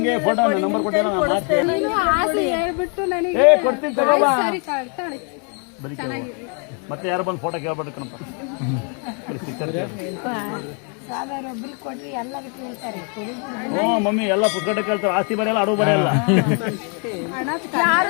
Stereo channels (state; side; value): quieter; right; 39.5 dB